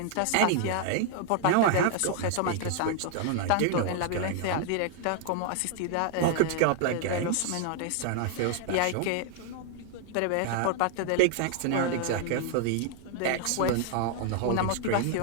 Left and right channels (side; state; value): both; different; correlation 0.00